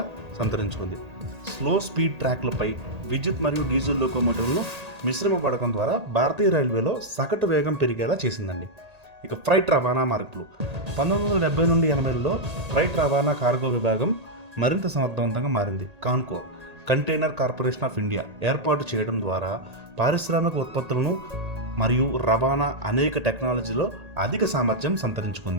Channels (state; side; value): late; left; 1.8 ms